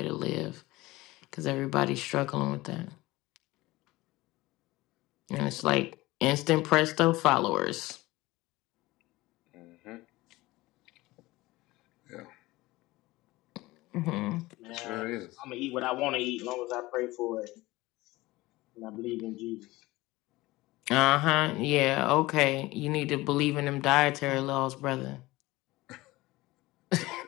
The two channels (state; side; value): quieter; right; 19.6 dB